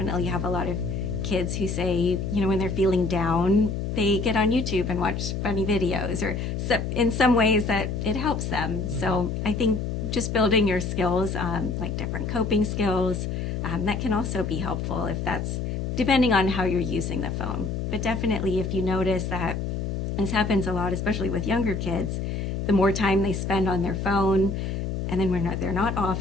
have a lot of kids who say, when they're feeling down, they get on YouTube and watch funny videos, or in some ways that it helps them. So I think just building your skills, like different coping skills, that can also be helpful if that's depending on how you're using the phone. But definitely if you notice that this happens a lot, especially with younger kids, the more time they spend on their phone, and then when they're not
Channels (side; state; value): left; noise; hum, 3 dB below the sound